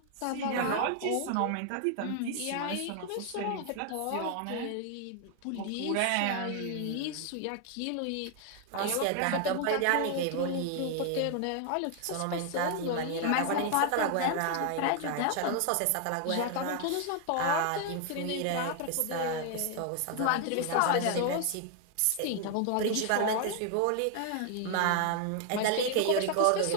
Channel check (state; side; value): different; both; correlation 0.00